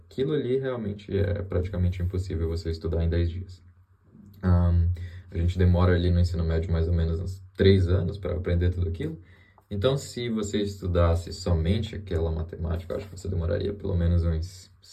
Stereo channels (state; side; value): identical; both; correlation 1.00